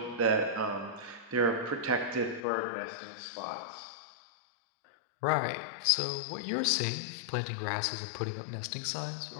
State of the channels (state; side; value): drops out; right; at 2.4 s